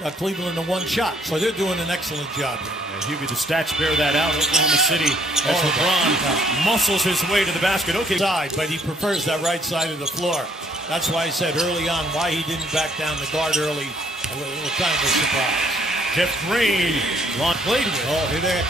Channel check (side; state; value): both; normal; correlation 0.66